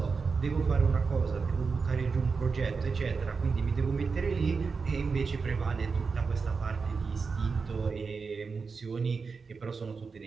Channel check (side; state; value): left; quieter; 4.9 dB